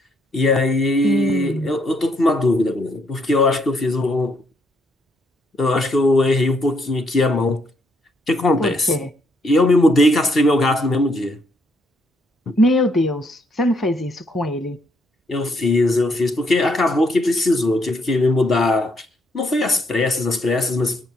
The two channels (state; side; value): normal; both; correlation 0.72